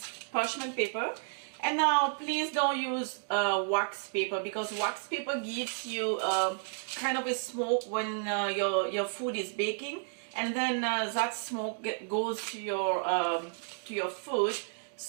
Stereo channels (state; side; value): silent; left; digital silence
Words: parchment paper. And now please don't use wax paper, because wax paper gives you kind of a smoke when your food is baking, and then that smoke goes to your food.